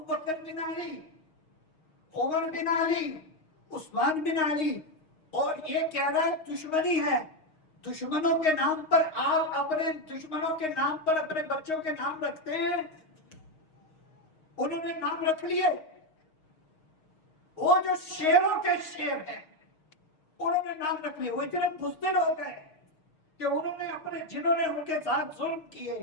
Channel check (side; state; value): right; late; 6.4 ms